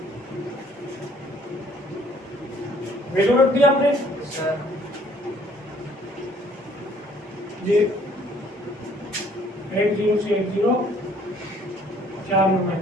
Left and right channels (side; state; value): both; normal; correlation 0.60